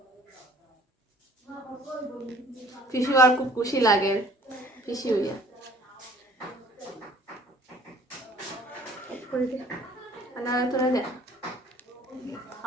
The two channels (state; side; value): normal; both; correlation 0.53